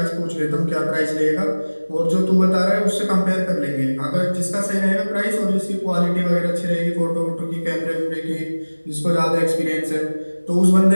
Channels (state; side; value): inverted; both; correlation -1.00